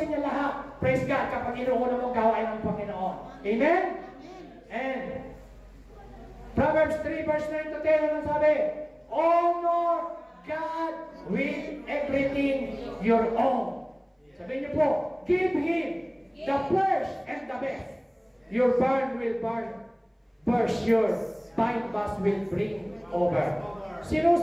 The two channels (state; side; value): identical; both; correlation 1.00